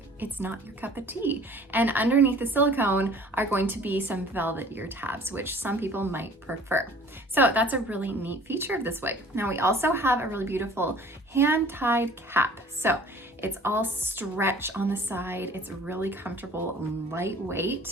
it's not your cup of tea. And underneath the silicone are going to be some velvet ear tabs, which some people might prefer. So that's a really neat feature of this wig. Now we also have a really beautiful hand-tied cap. So it's all stretch on the side. It's really comfortable and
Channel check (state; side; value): normal; both; correlation 0.49